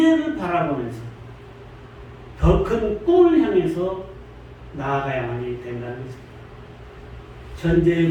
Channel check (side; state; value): both; identical; correlation 1.00